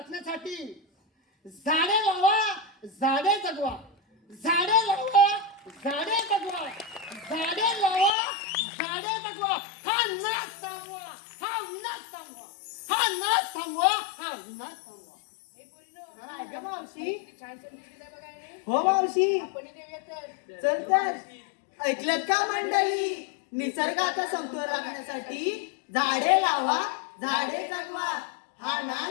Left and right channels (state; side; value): drops out; right; at 8.1 s